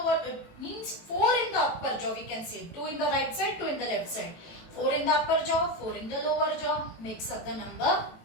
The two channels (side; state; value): right; late; 18 ms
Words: means 4 in the upper jaw, we can say. 2 in the right side, 2 in the left side. 4 in the upper jaw, 4 in the lower jaw, makes up the number